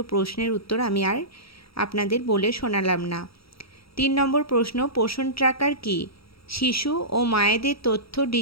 প্রশ্নের উত্তর আমি আর আপনাদের বলে শোনালাম না। 3 নম্বর প্রশ্ন, পোষণ ট্র্যাকার কি? শিশু ও মায়েদের তথ্য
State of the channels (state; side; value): late; right; 0.76 ms